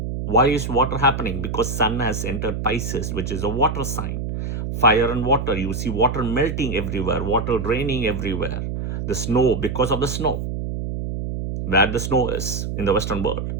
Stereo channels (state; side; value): noise; right; hum, 4 dB below the sound